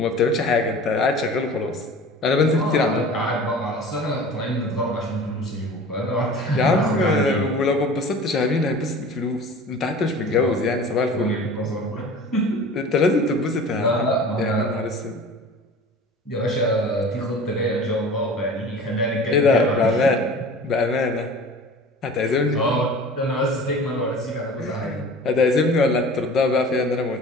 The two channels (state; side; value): normal; both; correlation 0.41